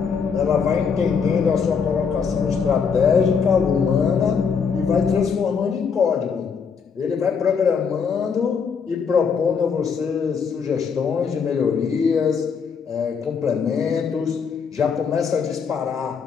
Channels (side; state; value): right; quieter; 6.1 dB